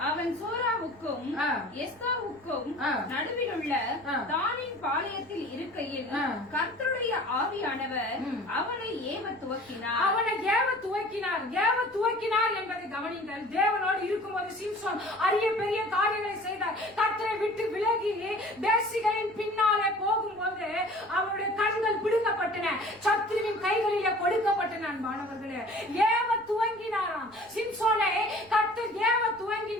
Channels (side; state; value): right; noise; rumble, 28 dB below the sound